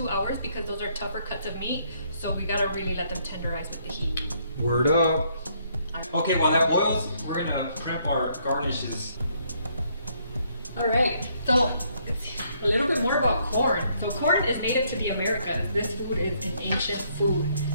hours because those are tougher cuts of meat, so we gotta really let them tenderize with the heat. Word up. Okay, while that boils, we're gonna prep our garnishes. All right, so a little bit more about corn. So corn is native to the Americas. This food is an ancient food.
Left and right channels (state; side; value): inverted; both; correlation -0.70